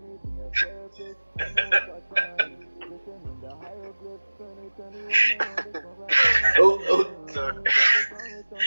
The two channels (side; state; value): both; inverted; correlation -1.00